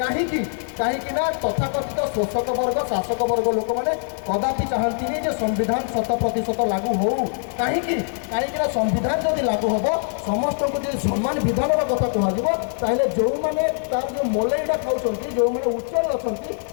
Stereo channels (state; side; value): silent; right; 64 dB below the other